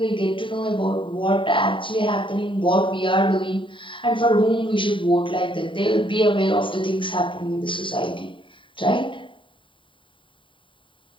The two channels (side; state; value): right; late; 0.25 ms